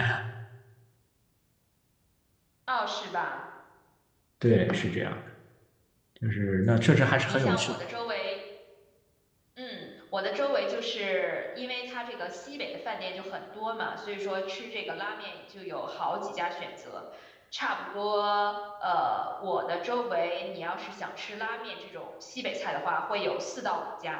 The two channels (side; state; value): both; identical; correlation 1.00